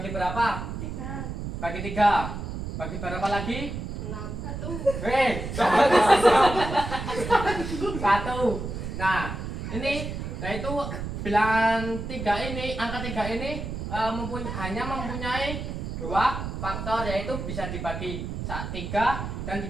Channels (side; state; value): right; noise; rumble, 6 dB below the sound